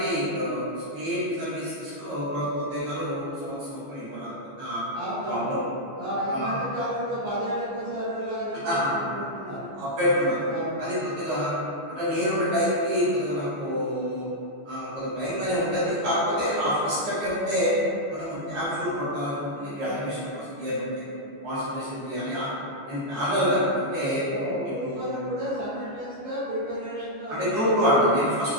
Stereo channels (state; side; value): late; left; 14 ms